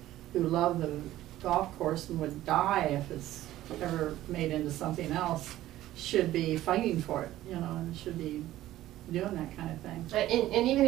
who love the golf course and would die if it's ever made into something else should be fighting for it, and should be doing that kind of thing. And even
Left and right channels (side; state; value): left; quieter; 14.6 dB